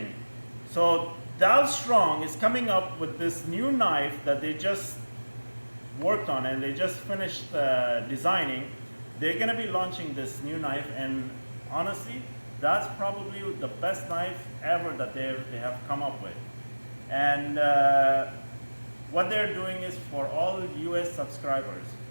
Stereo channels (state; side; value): inverted; both; correlation -1.00